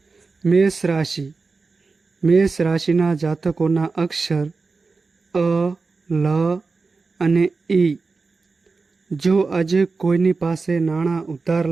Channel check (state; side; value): quieter; left; 4.2 dB